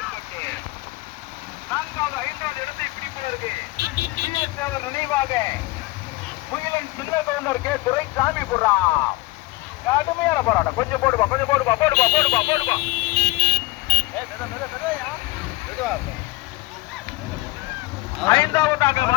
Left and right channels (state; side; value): quieter; right; 21.1 dB